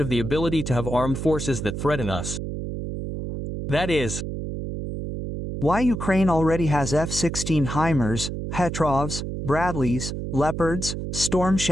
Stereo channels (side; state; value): right; noise; hum, 5 dB below the sound